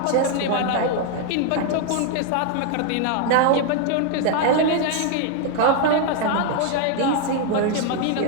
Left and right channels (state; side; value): different; both; correlation 0.00